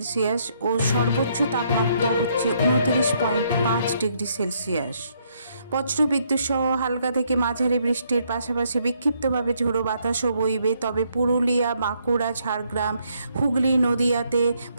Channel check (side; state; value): both; inverted; correlation -0.72